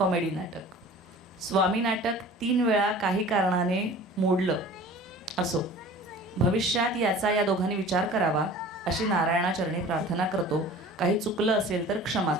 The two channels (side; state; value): both; normal; correlation 0.43